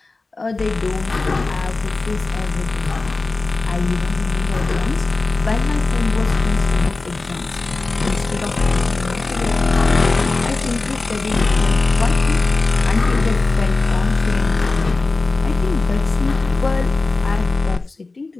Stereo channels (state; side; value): quieter; right; 3.5 dB